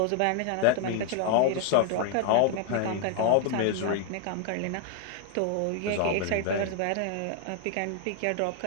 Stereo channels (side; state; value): both; different; correlation 0.00